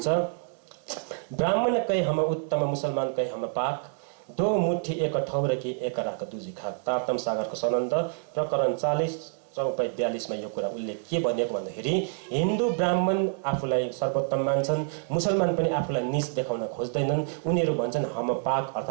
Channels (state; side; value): silent; left; 60 dB below the other